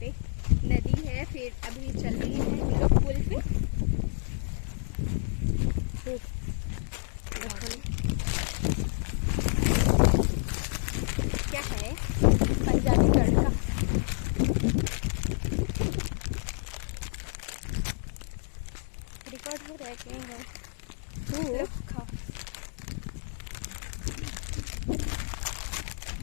पे नदी है, फिर अभी चल रही है हम लोग पुल पे। क्या है पंजाबी तड़का। रिकॉर्ड हो रहा है कहीं है तो खाओ।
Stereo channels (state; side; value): silent; right; 58 dB below the other